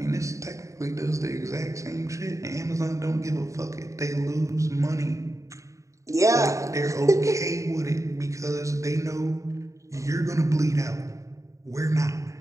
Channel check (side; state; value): left; late; 0.15 ms